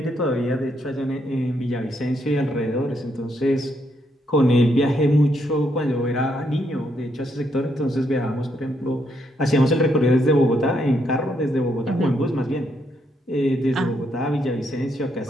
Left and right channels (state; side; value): normal; both; correlation 0.76